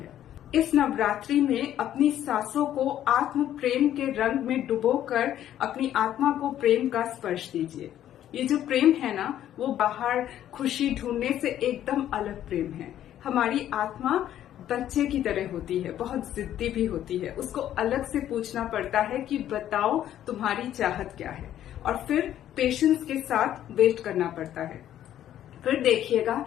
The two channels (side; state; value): right; quieter; 11.5 dB